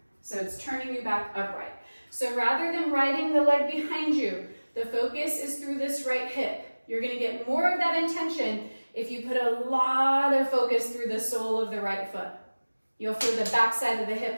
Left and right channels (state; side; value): inverted; both; correlation -1.00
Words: So it's turning you back upright. So rather than riding the leg behind you, the focus is through this right hip. You're going to get more of that intention if you put a lot of focus through the sole of the right foot. You'll feel the back side of the